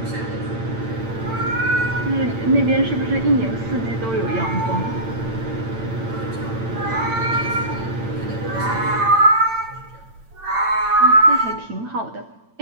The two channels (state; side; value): late; left; 8.9 ms